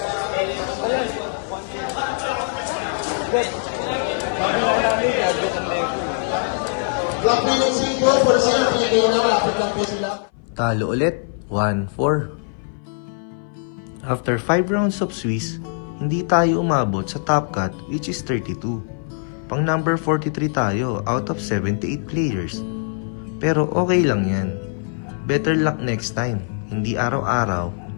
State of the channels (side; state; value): right; silent; 59 dB below the other